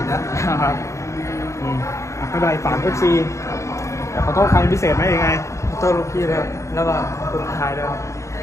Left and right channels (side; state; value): right; late; 0.14 ms